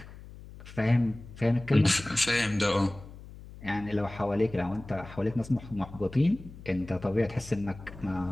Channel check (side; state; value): left; noise; hum, 16 dB below the sound